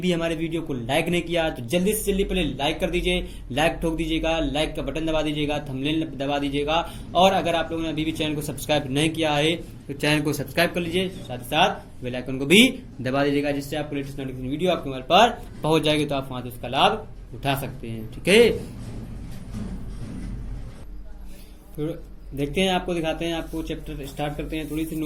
हमारे वीडियो को लाइक नहीं किया तो जल्दी से जल्दी पहले लाइक कर दीजिए, लाइक ठोक दीजिएगा, लाइक का बटन दबा दीजिएगा, थंबनेल दबा दीजिएगा। और अगर आप लोगों ने अभी भी चैनल को सब्सक्राइब नहीं किया है तो चैनल को सब्सक्राइब कर लीजिए, साथ ही साथ बेल आइकन को भी दबा दीजिएगा, जिससे आपको लेटेस्ट नोटिफिकेशन वीडियो आपके मोबाइल पर पहुंच जाएगी, तो आप वहां से उसका लाभ उठा सकते हैं। ठीक है, तो देखते हैं, आपको दिखाते हैं, आपको चैप्टर स्टार्ट करते हैं। थोड़ी सी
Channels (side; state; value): both; identical; correlation 1.00